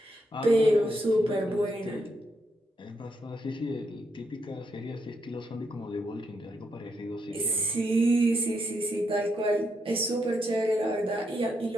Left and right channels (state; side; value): normal; both; correlation 0.80